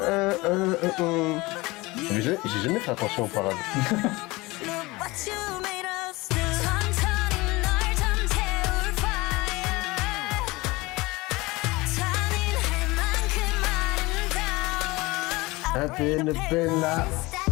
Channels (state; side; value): quieter; right; 22.2 dB